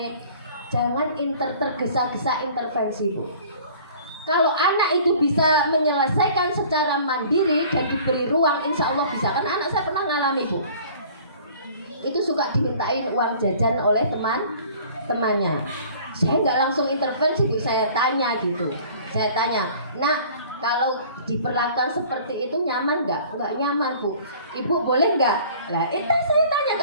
jangan tergesa-gesa intervensi Bu. Kalau anak itu bisa menyelesaikan secara mandiri dan diberi ruang, insya Allah bisa. Kan anak saya pernah ngalami Bu, itu suka dimintain uang jajan oleh temannya. Saya nggak langsung intervensi Bu, saya tanya gitu. Saya tanya, nak kalau diperlakukan seperti itu nyaman nggak? Nggak nyaman Bu. Ibu boleh nggak? Lah itu saya tanya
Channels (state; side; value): inverted; both; correlation -0.49